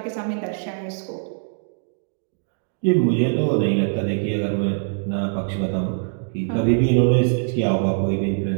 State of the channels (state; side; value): silent; left; 64 dB below the other